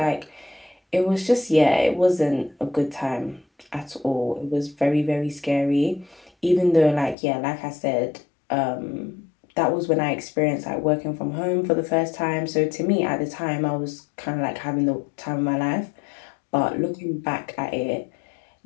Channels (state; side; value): drops out; right; at 7.2 s